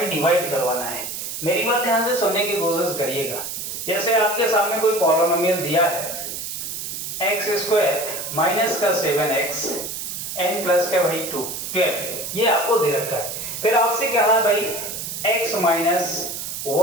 डिवाइड करवाना है। मेरी बात ध्यान से सुनने की कोशिश करिएगा। जैसे आपके सामने कोई पॉलिनोमियल दिया है x स्क्वायर माइनस का 7x n प्लस का भाई 12, ये आपको दे रखा है। फिर आपसे क्या है भाई x माइनस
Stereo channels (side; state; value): right; noise; hiss, 6 dB below the sound